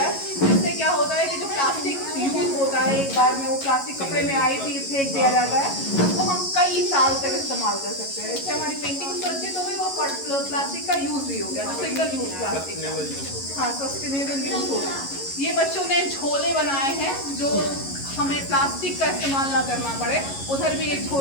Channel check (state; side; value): late; right; 11 ms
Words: है। जिससे क्या होता है कि जो प्लास्टिक यूज होता है, एक बार में वो प्लास्टिक कपड़े में आई थी, फेंक दिया जाता है, उसको हम कई साल तक इस्तेमाल कर सकते हैं। इससे हमारी पेंटिंग सुरक्षित हो गई और प्लास्टिक का यूज भी हो गया, सिंगल यूज प्लास्टिक। हाँ सस्टेनेबल यूज हो गया। ये बच्चों ने झोले बनाए हैं जो हमें प्लास्टिक का इस्तेमाल ना करना पड़े। उधर भी एक